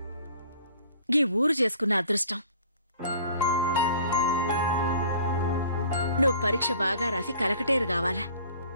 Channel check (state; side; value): inverted; both; correlation -0.51